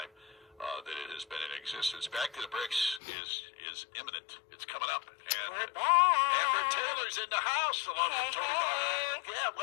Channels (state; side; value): drops out; right; at 3.0 s